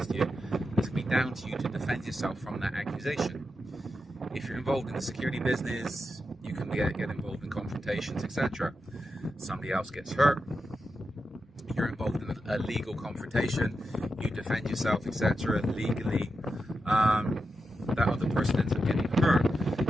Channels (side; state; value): both; normal; correlation 0.88